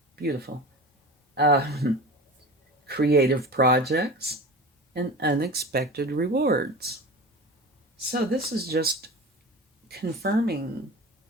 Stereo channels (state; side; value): normal; both; correlation 0.33